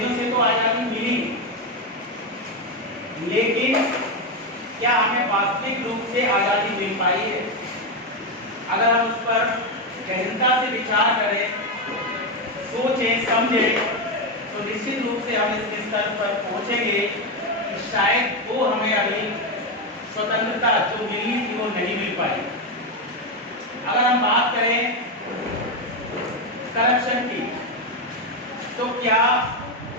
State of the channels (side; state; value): both; normal; correlation 0.09